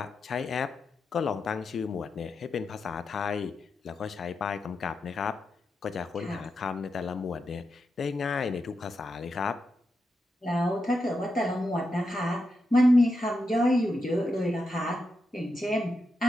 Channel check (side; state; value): both; normal; correlation 0.87